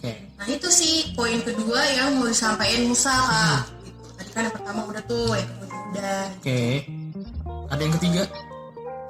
Nah itu sih poin kedua yang mau disampaikan Musa, Kak. Gitu. Tadi kan yang pertama udah tuh, yang kedua udah. Ada yang ketiga?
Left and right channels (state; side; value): identical; both; correlation 1.00